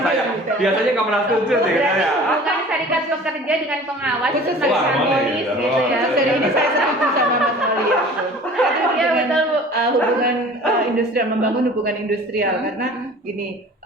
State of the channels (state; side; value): normal; both; correlation 0.44